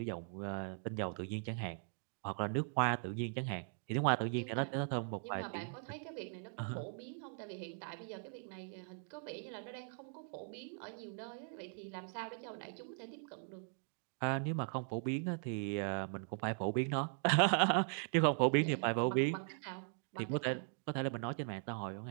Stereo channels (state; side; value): silent; left; 51 dB below the other